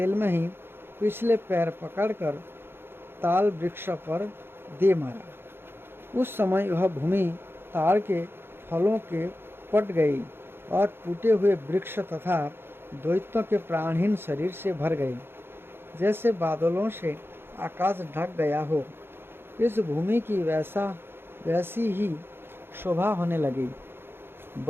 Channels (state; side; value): late; left; 0.11 ms